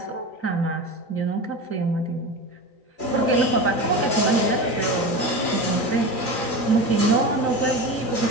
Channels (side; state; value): right; late; 3.9 ms